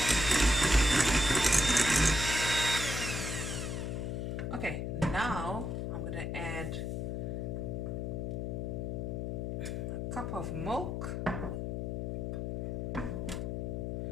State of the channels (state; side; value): noise; left; hum, 2 dB below the sound